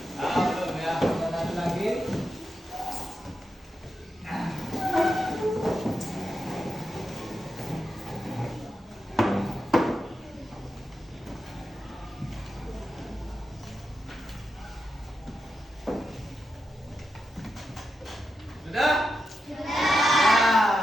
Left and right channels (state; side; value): normal; both; correlation 0.88